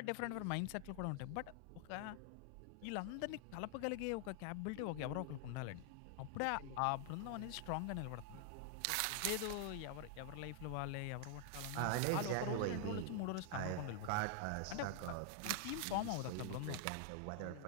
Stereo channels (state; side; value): different; both; correlation 0.00